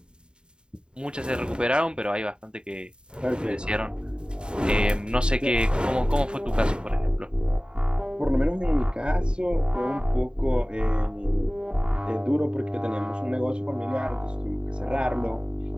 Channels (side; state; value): left; late; 0.050 ms